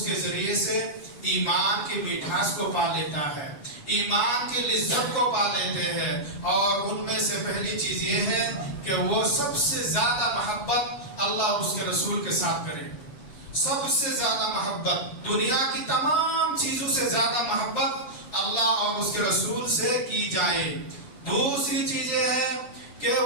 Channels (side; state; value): right; late; 7.0 ms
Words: کے ذریعے سے ایمان کی مٹھاس کو پا لیتا ہے، ایمان کی لذت کو پا لیتے ہیں. اور ان میں سے پہلی چیز یہ ہے کہ وہ سب سے زیادہ محبت اللہ اور اس کے رسول کے ساتھ کرے. سب سے زیادہ محبت، دنیا کی تمام چیزوں سے زیادہ محبت اللہ اور اس کے رسول سے کی جائے. دوسری چیز یہ ہے کہ